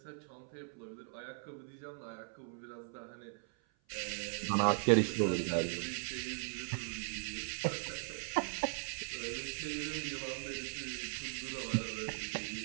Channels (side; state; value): left; silent; 52 dB below the other